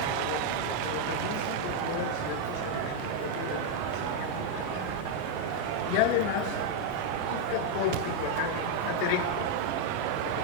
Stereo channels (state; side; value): different; both; correlation 0.00